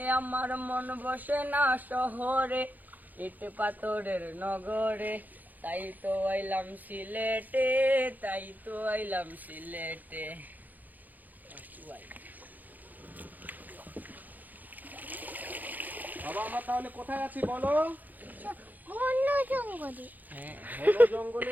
আমার মন বসে না শহরে, ইট পাথরের নগরে, তাই তো আইলাম সিলেটে, তাই তো আইলাম সিলেটে। বাবা আমরা তাহলে কোথায় আছি বলো? জঙ্গলে। ঘন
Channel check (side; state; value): left; late; 0.083 ms